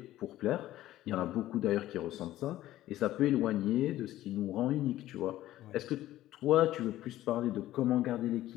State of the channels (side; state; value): right; quieter; 14.5 dB